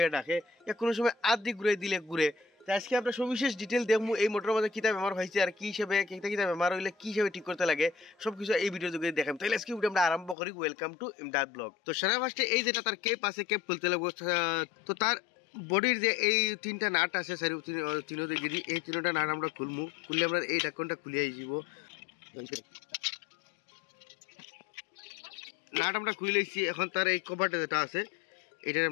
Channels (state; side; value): drops out; right; at 10.4 s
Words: ডাকে, কোনো সময় আধি ঘুরে দিলে ঘুরে। আজকে আমরা সবিশেষ ডিটেল দেখবো এই মোটরের মধ্যে কিতা বেমার হয়েছে আর কি হিসেবে কিতা বেমার হইলে কি হিসেবে ঠিক করতে লাগে সবকিছু এই ভিডিও যোগে দেখাম। তাহলে আজকে ভিডিও আমরা আরম্ভ করি। Welcome to Imdad blog. তো সারা ফার্স্টে এই যেটা তার কেপ আছে কেপ খুলতে লাগবো। তো তার বডির যে এই 3টা নাট আছে তিনো দিকে এই 3টা নাট আমরা খুলমু। খুললে আমরা এই ঢাকনটা খুলিয়ে যাব। নাট আমরা খুলে লইছি। এখন তার এই কভারটা যেটা আছে এটা